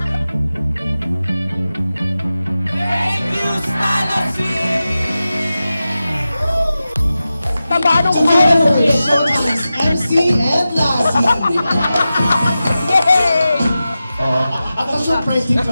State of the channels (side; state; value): both; inverted; correlation -0.93